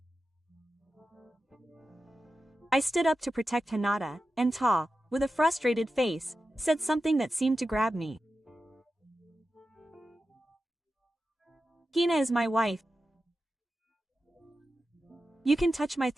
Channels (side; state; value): both; normal; correlation 0.92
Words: I stood up to protect Hinata, and Ta, with a frustrated face, said something that seemed to grab me. Hina is my wife. You can touch my